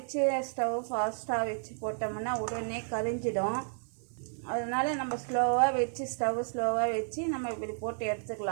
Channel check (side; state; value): left; silent; digital silence